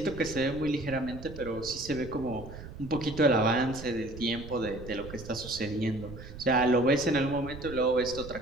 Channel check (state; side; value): noise; right; rumble, 13 dB below the sound